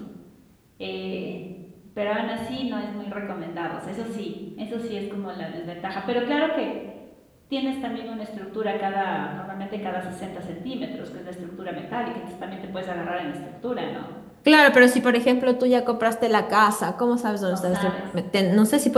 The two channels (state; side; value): identical; both; correlation 1.00